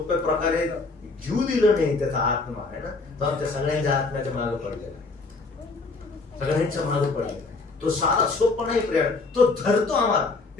प्रकारे घेऊ दिलं नाही, त्याचा आत्मा आहे ना, तो आमच्या सगळ्यांच्या आत्म्याच्या मागे पडलेला आहे, सगळ्यांच्या मागे पडलेला आहे. तो सारा सोपा नाही प्रिय, तो धरतो आम्हाला.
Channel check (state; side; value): quieter; right; 3.8 dB